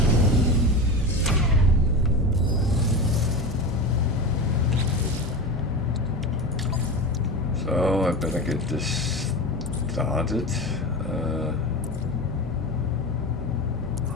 So I better get this started.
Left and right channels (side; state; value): both; normal; correlation 0.25